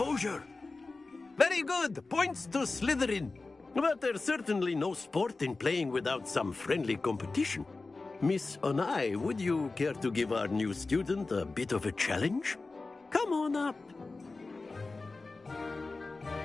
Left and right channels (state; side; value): quieter; right; 3.6 dB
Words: Very good. Points to Slytherin. But there's certainly no sport in playing without some friendly competition. Miss Onai, would you care to give our new student a bit of a challenge? Come on up.